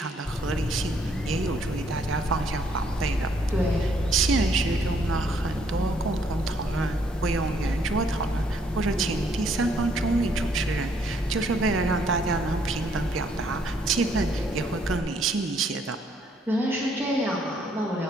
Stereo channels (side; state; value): both; normal; correlation 0.68